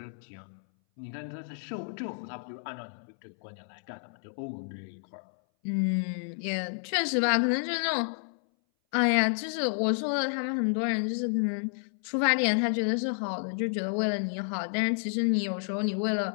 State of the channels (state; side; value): silent; right; 58 dB below the other